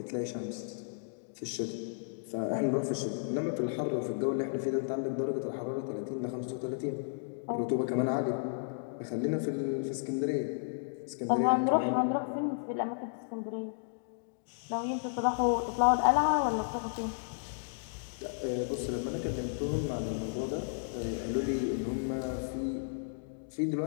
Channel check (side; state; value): right; silent; digital silence